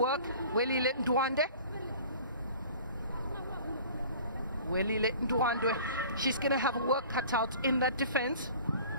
Welile Ndwandwe. Welile Ndwandwe, she's going to have a work cut out in that defense.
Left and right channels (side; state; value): both; inverted; correlation -0.45